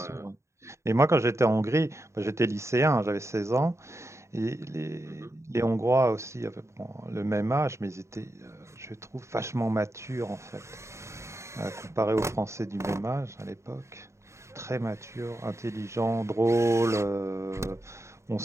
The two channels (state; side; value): late; left; 0.14 ms